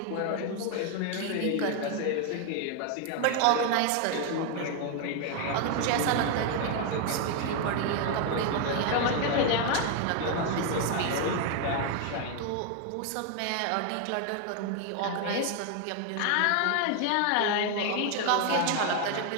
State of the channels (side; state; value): both; different; correlation 0.01